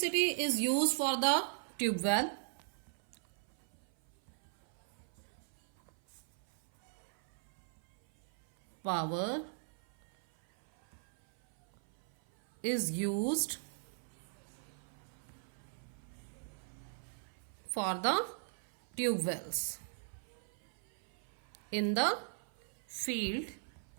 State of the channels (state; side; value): silent; left; 52 dB below the other